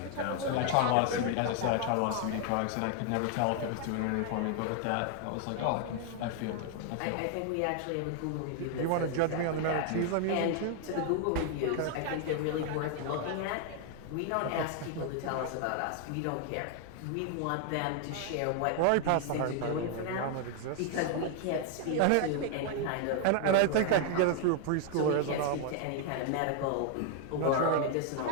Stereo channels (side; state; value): both; different; correlation 0.00